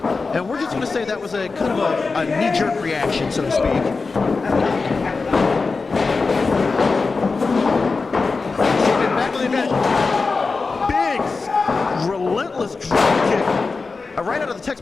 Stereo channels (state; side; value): quieter; right; 4.2 dB